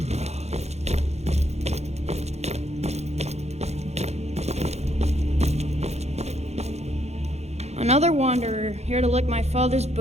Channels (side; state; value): left; late; 0.31 ms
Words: Another wanderer, here to lick my father's